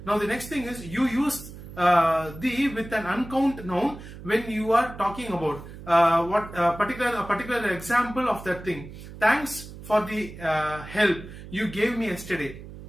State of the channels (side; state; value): right; noise; hum, 14 dB below the sound